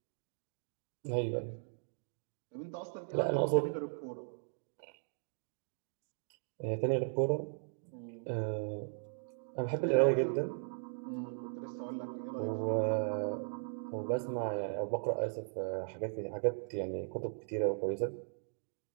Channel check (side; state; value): left; silent; digital silence